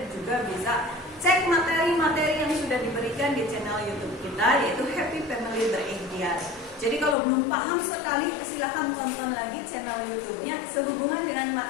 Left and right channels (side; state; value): right; drops out; at 7.2 s